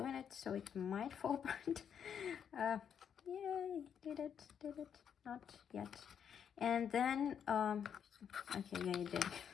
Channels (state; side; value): quieter; right; 8.0 dB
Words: it, so it might fall apart. Yay, did it, not yet. And then, okay, yeah, you did.